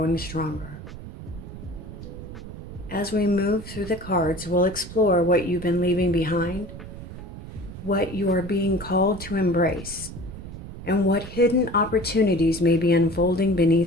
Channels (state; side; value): noise; right; rumble, 12 dB below the sound